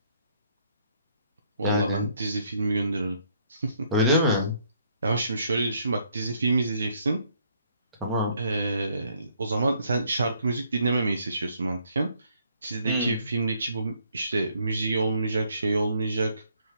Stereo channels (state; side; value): inverted; both; correlation -0.67